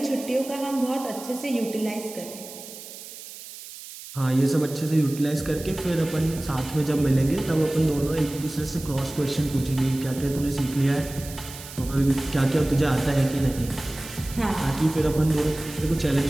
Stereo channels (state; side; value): noise; right; hiss, 14 dB below the sound